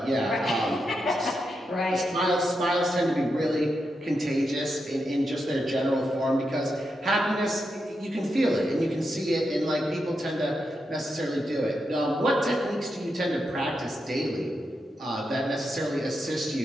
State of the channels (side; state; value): both; normal; correlation 0.85